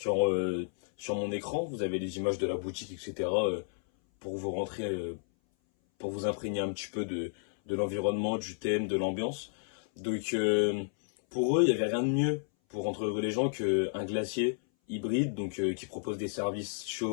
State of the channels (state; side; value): silent; right; 57 dB below the other